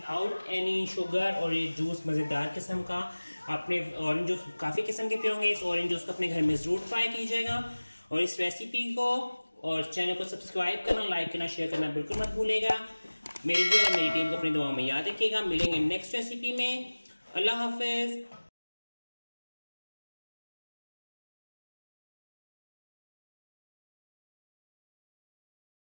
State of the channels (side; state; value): both; inverted; correlation -1.00